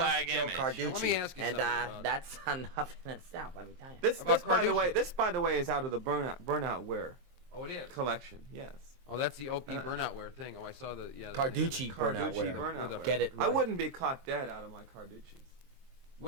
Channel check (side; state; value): left; late; 23 ms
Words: Flag Joe image. Carducci. Let me ask you and something about- that's enough in itself. Let me tell you. This, About this by the way, Carducci. this by the way is out of the burnout wear Oh, it is. collection. Yes. Oh, that's the OP burnout wear thing. Oh, I saw the the Carducci burnout Carducci wear. burnout With a- wear. Get it I right. wouldn't be caught dead out of my Carduccis.